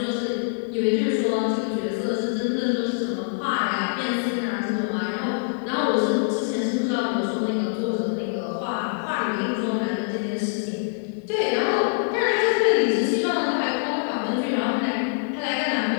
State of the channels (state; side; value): silent; right; digital silence